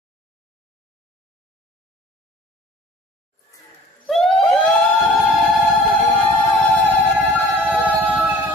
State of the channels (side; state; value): both; normal; correlation 0.49